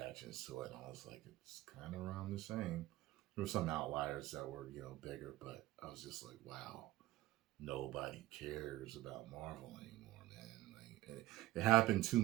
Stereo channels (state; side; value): quieter; left; 16.6 dB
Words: to it, and I was like, it's kind of around the same. There were some outliers that were, bigger, but I was just like, wow, nobody cares about Marvel anymore, man. It happened too